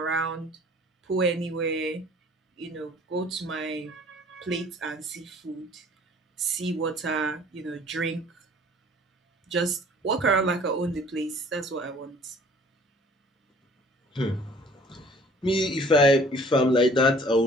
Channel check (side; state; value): both; normal; correlation 0.52